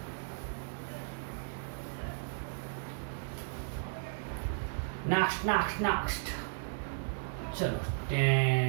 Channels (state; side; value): silent; left; 55 dB below the other